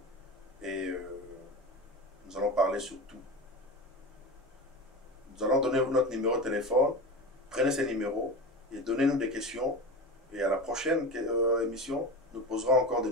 Et nous allons parler sur tout. Nous allons donner notre numéro de téléphone. Prenez ces numéros et donnez-nous des questions. Et à la prochaine émission, nous poserons encore de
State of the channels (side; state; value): both; normal; correlation 0.26